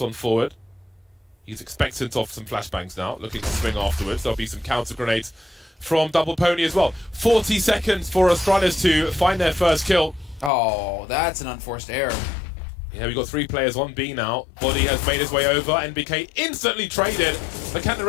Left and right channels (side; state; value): right; drops out; at 10.5 s